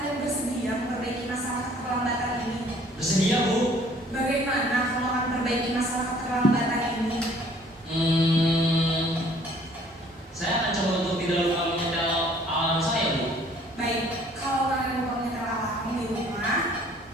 bersedia memperbaiki masalah keterlambatan ini? Bersedia Bu. Bagaimana kamu akan memperbaiki masalah keterlambatan ini? Saya akan coba untuk tidak lupa menyetel alarm saya Bu. Baik, kalau Naren lupa menyetel alarm di rumah,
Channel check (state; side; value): normal; both; correlation 0.56